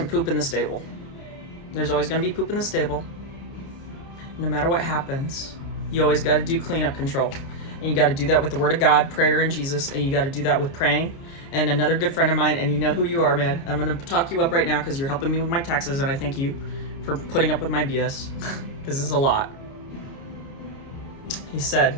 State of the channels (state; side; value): late; right; 29 ms